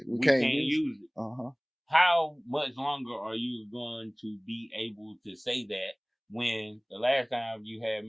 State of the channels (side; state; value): both; identical; correlation 1.00